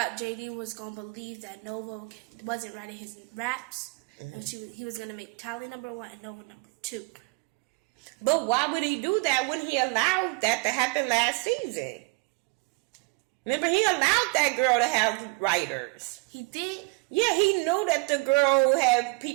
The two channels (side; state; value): left; quieter; 29.4 dB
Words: JD was going to believe that Nova wasn't writing his raps. Mm-hmm. And he was going to make Tally number 1 and Nova number 2. But why would he do that when he allowed that to happen last season? Remember, he allowed that girl to have writers. He did? Yeah, he knew that the girl had